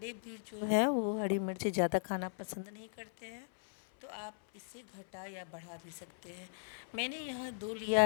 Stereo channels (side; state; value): right; silent; 52 dB below the other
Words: भी जो है वो हरी मिर्च ज़्यादा खाना पसंद नहीं करते हैं। तो आप इसे घटा या बढ़ा भी सकते हैं। मैंने यहाँ 2 लिया